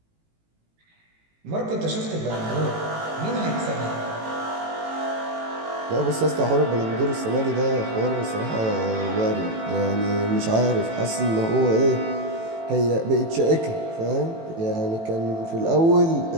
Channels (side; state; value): left; late; 18 ms